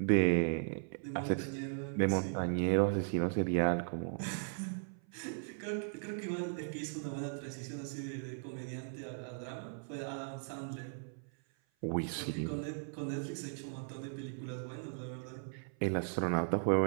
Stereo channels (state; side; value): silent; left; 53 dB below the other